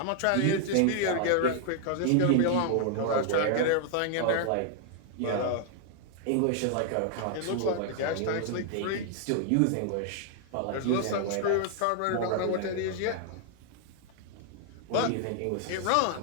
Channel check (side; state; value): both; different; correlation 0.00